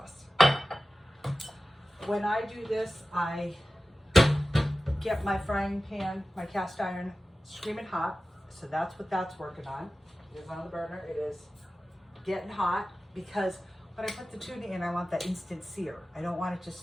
When I do this, I get my frying pan, my cast iron, screaming hot. So that's what that's working on. It is on the burner. It is getting hot, because when I put the tuna in, I want that instant sear. I don't want it to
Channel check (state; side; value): normal; both; correlation 0.95